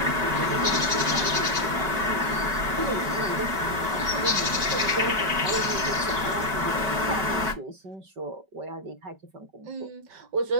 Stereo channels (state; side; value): late; left; 5.2 ms